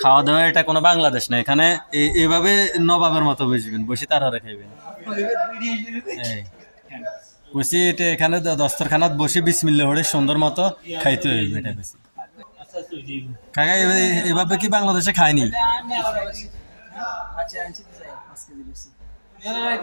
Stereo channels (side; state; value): both; inverted; correlation -1.00